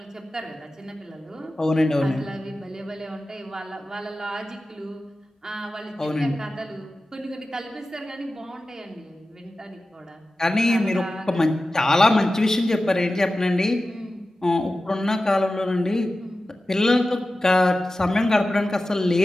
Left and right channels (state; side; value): normal; both; correlation 0.94